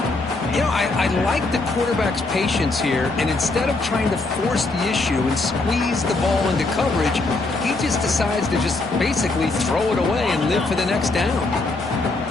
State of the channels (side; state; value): right; quieter; 3.2 dB